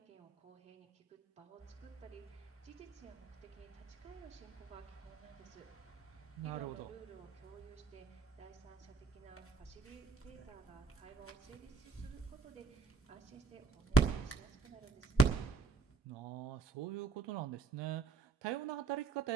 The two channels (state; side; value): quieter; left; 4.1 dB